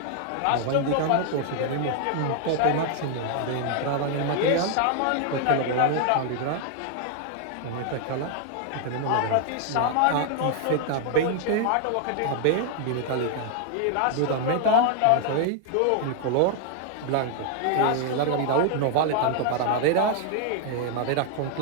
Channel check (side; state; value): both; different; correlation 0.00